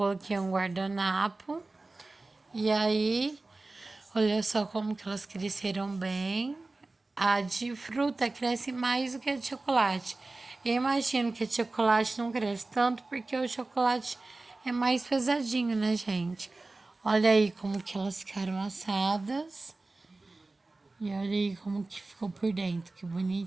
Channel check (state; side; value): quieter; left; 3.2 dB